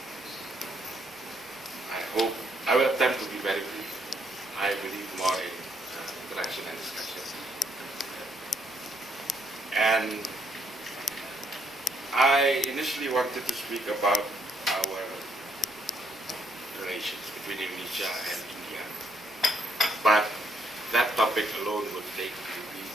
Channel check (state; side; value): normal; both; correlation 0.73